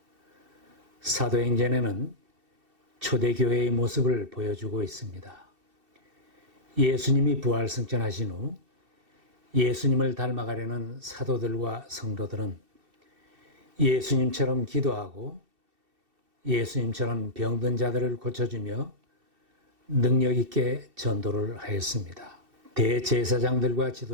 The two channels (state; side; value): late; left; 2.7 ms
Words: 사도행전에는 초대교회의 모습을 보여주고 있습니다. 예수님이 부활승천하신 후 예수님을 닮아가려는 사도들과 성도들은 예수님처럼 기도하고 예수님처럼 병든 자들을 고쳐주며 능력 있게 전도를 하였습니다. 대제사장들과